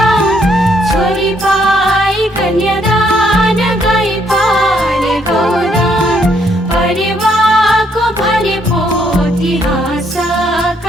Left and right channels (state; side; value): normal; both; correlation 0.71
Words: छोरी पाई कन्यादान गई पाले गौदान परिवारको भने पोथी